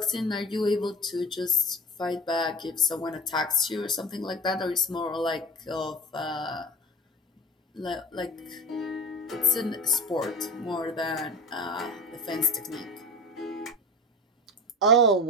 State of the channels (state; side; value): normal; both; correlation 0.31